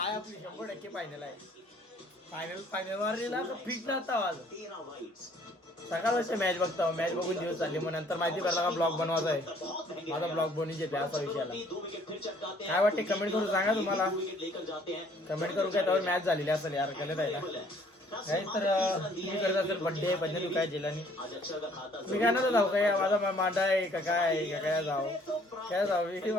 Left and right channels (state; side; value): normal; both; correlation 0.59